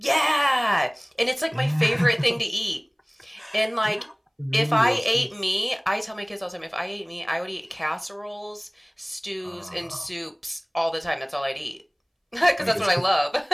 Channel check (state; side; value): identical; both; correlation 1.00